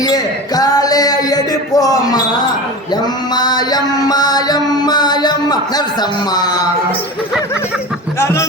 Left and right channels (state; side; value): normal; both; correlation 0.30